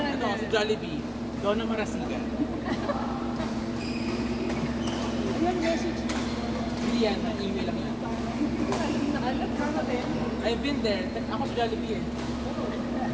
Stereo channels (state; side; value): identical; both; correlation 1.00